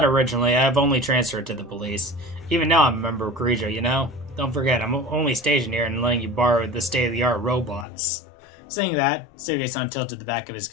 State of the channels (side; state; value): right; drops out; at 7.9 s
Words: originally, I've only transferred to the police. Even now I'm a member of Kirijo, you know? Don't forget, I'm only stationed here and letting you borrow the state-of-the-art robots. Saying that, Suge-san tilted the back of his